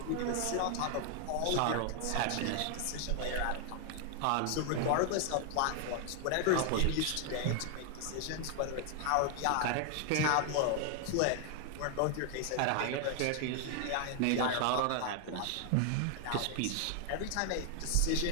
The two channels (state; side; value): different; both; correlation 0.00